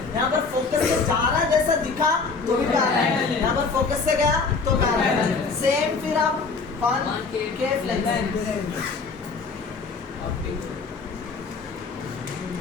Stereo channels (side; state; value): right; quieter; 4.6 dB